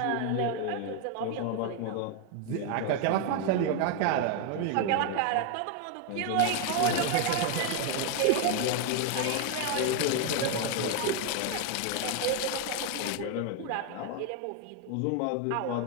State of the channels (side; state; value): both; different; correlation 0.00